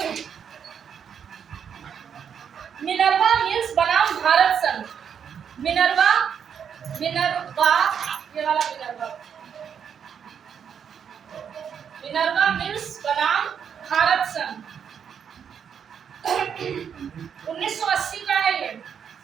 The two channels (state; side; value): quieter; left; 7.7 dB